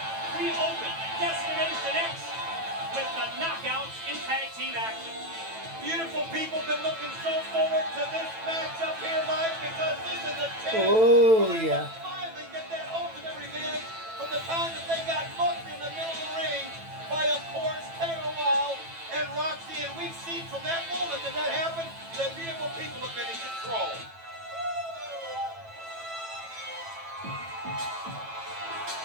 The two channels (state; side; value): late; left; 9.0 ms